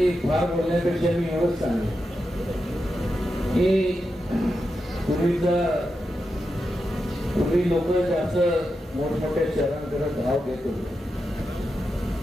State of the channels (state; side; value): normal; both; correlation 0.88